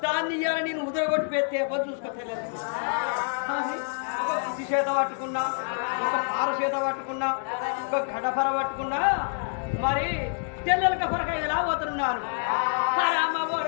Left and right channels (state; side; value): silent; right; digital silence